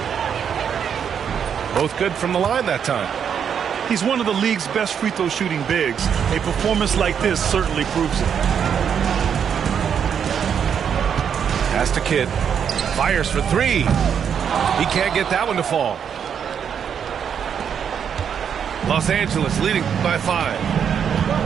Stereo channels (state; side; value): quieter; left; 7.8 dB